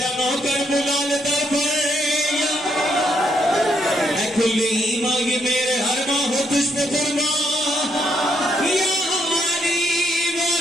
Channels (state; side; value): normal; both; correlation 0.75